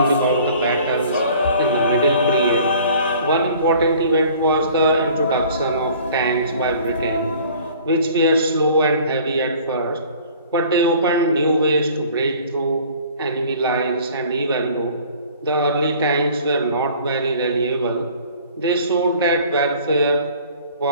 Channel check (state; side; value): inverted; both; correlation -0.51